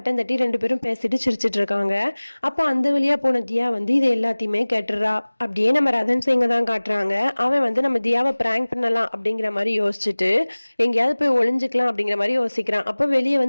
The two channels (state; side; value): inverted; both; correlation -1.00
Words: தட்டி ரெண்டு பேரும் பேசிட்டு சிரிச்சிட்டு இருக்காங்க. அப்போ அந்த வழியாக போன தியா வந்து இது எல்லாத்தையுமே கேட்டுறா. அப்படியே நம்ம ரதன் சிங்கை தான் காட்டுறாங்க. அவன் வந்து நம்ம தியாவை பிராங்க் பண்ணலாம் அப்படிங்கிற மாதிரி யோசிச்சுட்டு எங்கேயாவது போய் ஒளிஞ்சுக்கலாம் அப்படிங்கிற மாதிரி யோசிக்கிறான். அப்போ வெளியே